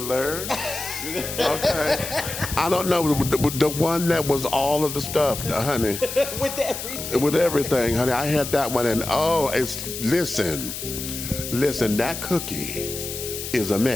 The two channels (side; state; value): left; noise; hiss, 7 dB below the sound